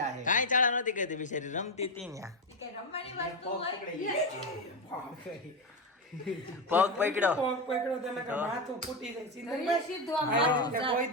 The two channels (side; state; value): both; normal; correlation 0.12